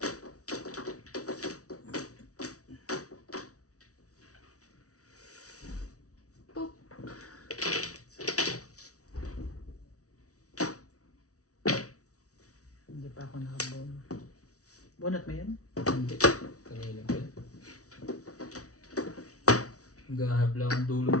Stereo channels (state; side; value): late; right; 0.66 ms